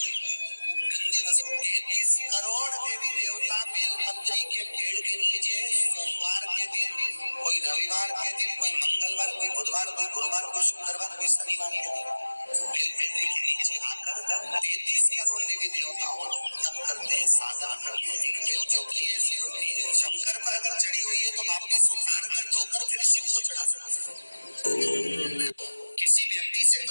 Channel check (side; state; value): both; inverted; correlation -1.00